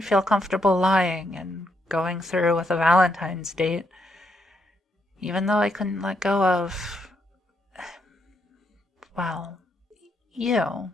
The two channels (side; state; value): both; normal; correlation 0.77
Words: feel comfortable lying and going through with a Valentine's date, even though I couldn't let go of, well, you.